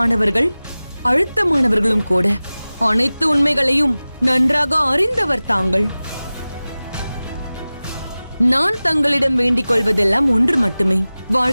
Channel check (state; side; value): inverted; both; correlation -0.97